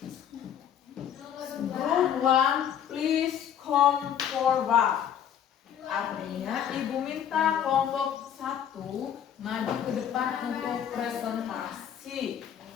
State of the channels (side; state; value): right; quieter; 9.2 dB